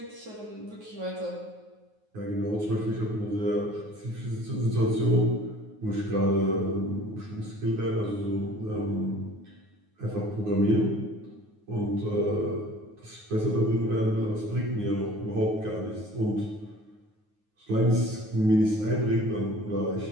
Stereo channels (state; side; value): late; left; 9.4 ms